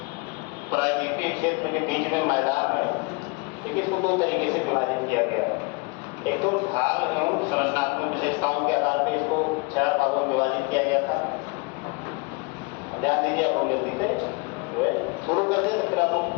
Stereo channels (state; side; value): quieter; right; 29.2 dB